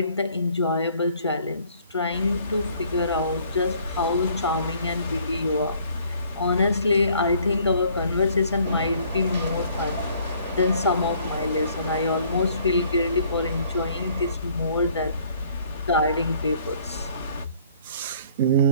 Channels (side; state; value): both; inverted; correlation -0.59